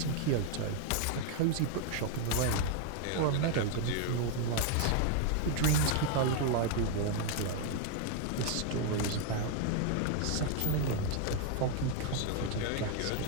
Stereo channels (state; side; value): different; both; correlation 0.00